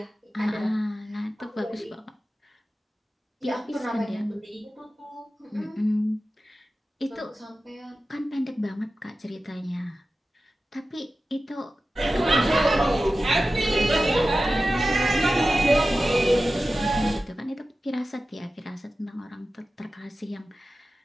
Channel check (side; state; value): both; normal; correlation 0.94